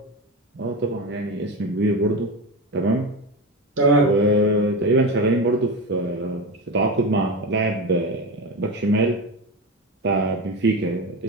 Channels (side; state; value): both; normal; correlation 0.20